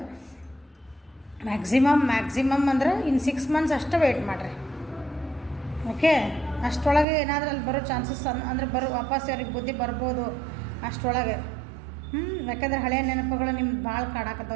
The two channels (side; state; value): left; drops out; at 7.1 s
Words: ಮ್ಯಾಕ್ಸಿಮಮ್ ಅಂದ್ರೆ ಇನ್ನು 6 ಮಂತ್ಸ್ ಅಷ್ಟೇ ವೆಯ್ಟ್ ಮಾಡಿರಿ. ಓಕೆ, ಅಷ್ಟರೊಳಗೆ ಏನಾದರೂ ಅಲ್ಲಿ ಬರೋ ಚಾನ್ಸಸ್ ಅಂದರೆ ವಾಪಸ್ ಅವ್ರಿಗೆ ಬುದ್ಧಿ ಬರ್ಬೋದು ಅಷ್ಟರೊಳಗೆ. ಯಾಕಂದ್ರೆ ಹಳೆಯ ನೆನಪುಗಳು ನಿಮ್ಗೆ ಭಾಳ